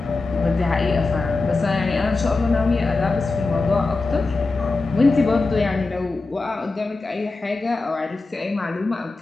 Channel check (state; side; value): quieter; right; 3.6 dB